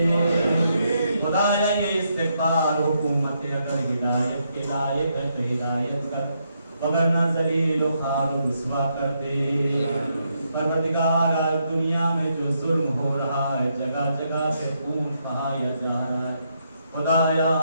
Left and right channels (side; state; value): both; inverted; correlation -0.78